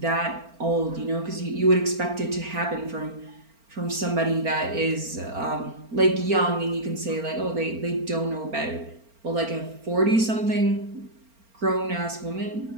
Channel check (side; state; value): left; late; 4.4 ms